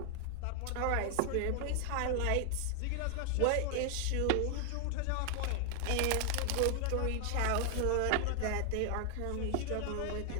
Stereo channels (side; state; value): both; different; correlation 0.00